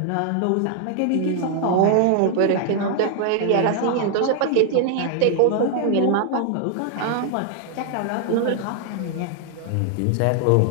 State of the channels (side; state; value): both; different; correlation 0.00